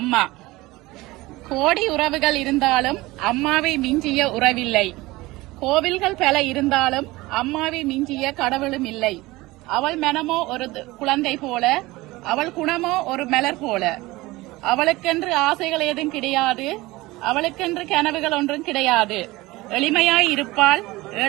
கோடி உறவுகள் இருந்தாலும் அம்மாவை மிஞ்சிய உறவில்லை. கோவில்கள் பல இருந்தாலும் அம்மாவை மிஞ்சிய கடவுளும் இல்லை. அவள் மனமோ ஒரு குழந்தை போல, அவள் குணமோ ஒரு மலர் போல. அவளுக்கென்று ஆசைகள் ஏதும் கிடையாது, அவளுக்கென்று கனவுகள் ஒன்றும் கிடையாது. எளிமையாய் இருப்பாள்,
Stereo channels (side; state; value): left; quieter; 20.2 dB